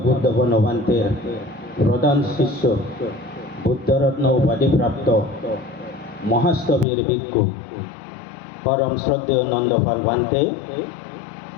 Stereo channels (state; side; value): drops out; right; at 6.9 s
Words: বনবান্তের প্রধান শিষ্য বুদ্ধরত্ন উপাধিপ্রাপ্ত মহাস্তবীর ভিক্ষু পরম শ্রদ্ধেয় নন্দপাল ভান্তে